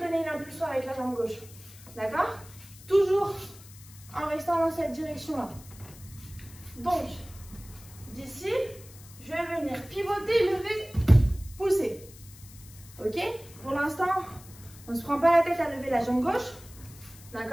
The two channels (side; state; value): left; noise; hiss, 20 dB below the sound